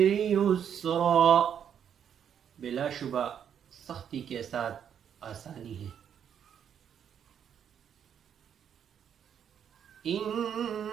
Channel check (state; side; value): quieter; left; 8.5 dB